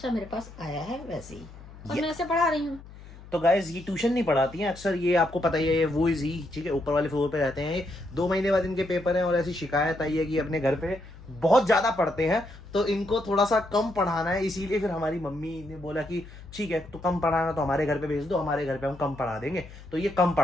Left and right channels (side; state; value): left; noise; hum, 18 dB below the sound